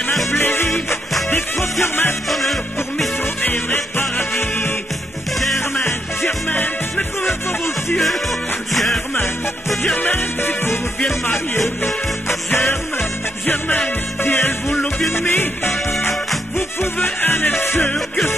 plaisir. Des fois sur ma bonheur pour Mistro et vrai paradis. Germaine, mais comment pas vos yeux? Germaine, si vous vous bien marier. Germaine, si elle vous l'a bien mis, vous pouvez en être sûr que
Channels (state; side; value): normal; both; correlation 0.78